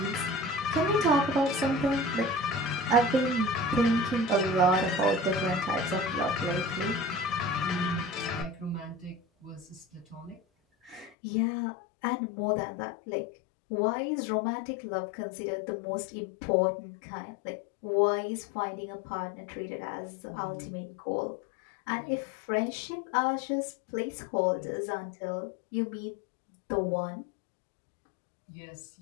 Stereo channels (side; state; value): right; drops out; at 11.1 s